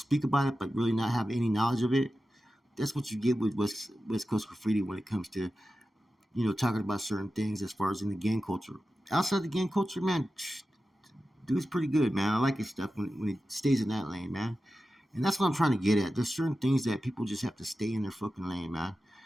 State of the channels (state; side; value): normal; both; correlation 0.93